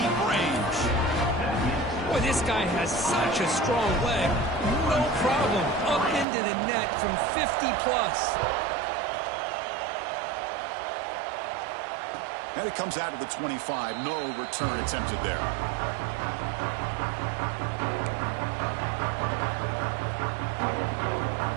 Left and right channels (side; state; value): left; drops out; at 6.2 s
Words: range. Boy, this guy has such a strong leg. No problem. Up into the net from 50+. And it comes out of the 25. No return attempted there.